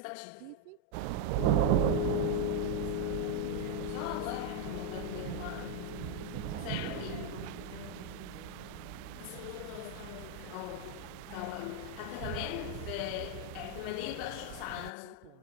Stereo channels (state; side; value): different; both; correlation 0.00